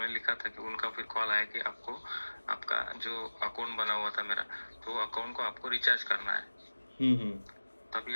लिखा था कि उनका फिर कॉल आया कि आपको, आपका जो अकाउंट बना हुआ था मेरा, तो अकाउंट को आपको रिचार्ज करना है। तभी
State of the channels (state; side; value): inverted; both; correlation -1.00